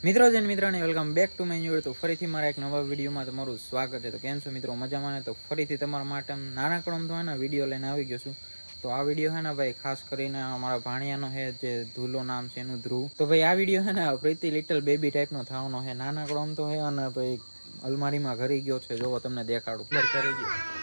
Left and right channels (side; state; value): both; inverted; correlation -1.00